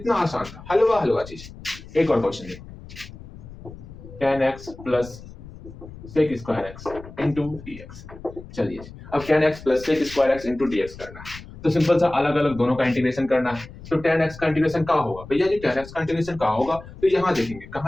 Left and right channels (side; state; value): left; noise; rumble, 16 dB below the sound